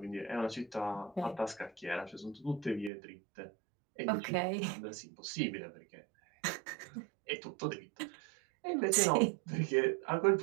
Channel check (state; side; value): drops out; left; at 2.9 s